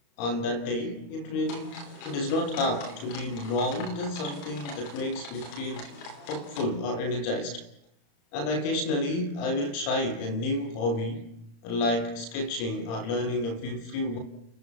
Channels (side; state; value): right; late; 35 ms